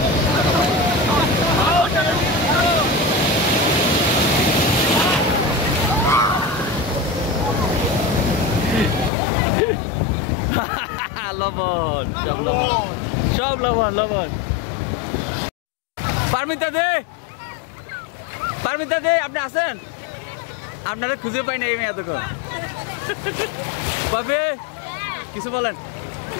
লবণ সব লবণ সব লবণ লবণ। পারমিতা দে, পারমিতা দে, আপনি আছেন? আপনারা খুঁজে পাই না এই মেয়ে এতক্ষণ। বাপে কিছু বলেন,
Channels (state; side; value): drops out; right; at 9.1 s